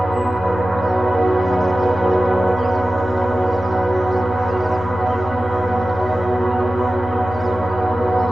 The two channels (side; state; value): both; normal; correlation 0.95